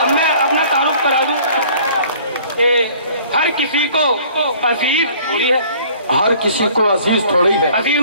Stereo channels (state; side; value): inverted; both; correlation -0.53